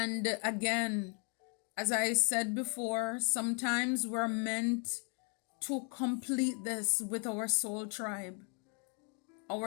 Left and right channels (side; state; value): right; quieter; 37.6 dB